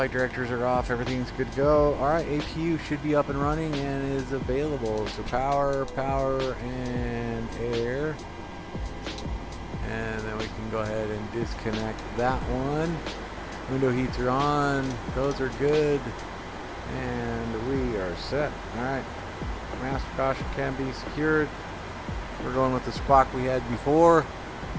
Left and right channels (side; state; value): both; identical; correlation 1.00